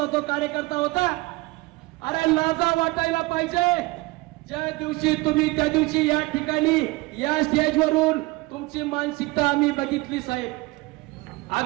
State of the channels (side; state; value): left; quieter; 22.6 dB